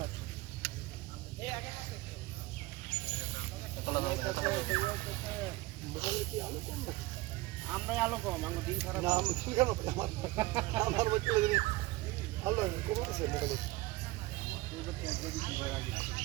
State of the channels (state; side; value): quieter; left; 19.8 dB